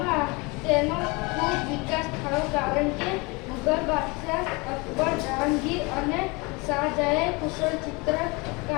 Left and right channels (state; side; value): quieter; right; 27.1 dB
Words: તેનો ખૂબ વિકાસ થયો, કારણ કે મુઘલ બાદશાહ અકબર, જહાંગીર અને શાહજહાએ કુશળ